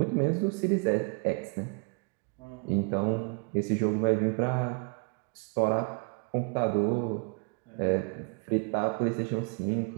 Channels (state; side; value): quieter; left; 38.1 dB